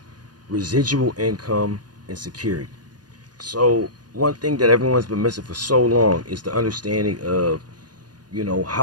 residual income and security. So one thing that everyone's been missing for so long is the understanding of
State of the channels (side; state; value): left; late; 0.69 ms